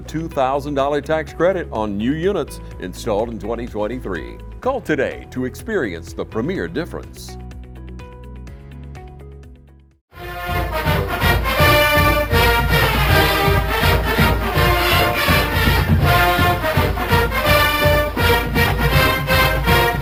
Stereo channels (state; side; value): identical; both; correlation 1.00